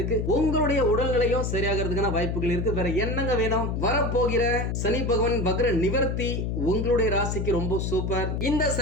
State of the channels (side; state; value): left; noise; hum, 1 dB below the sound